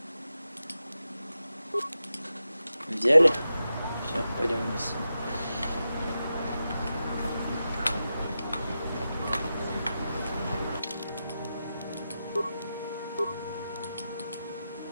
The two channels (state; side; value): inverted; both; correlation -0.90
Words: Взяли? Все, пойдем вниз.